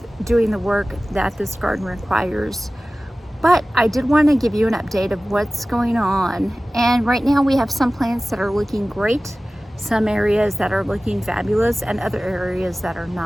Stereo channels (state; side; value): normal; both; correlation 0.97